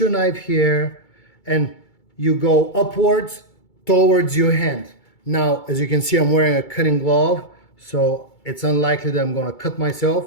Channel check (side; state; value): right; late; 2.3 ms